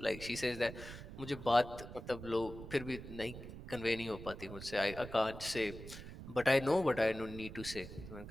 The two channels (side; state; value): right; noise; rumble, 12 dB below the sound